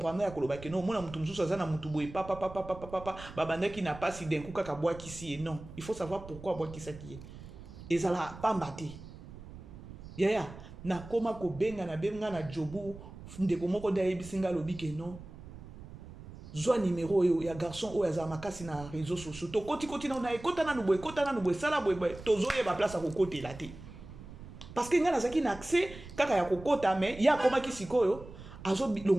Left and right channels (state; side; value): noise; right; rumble, 15 dB below the sound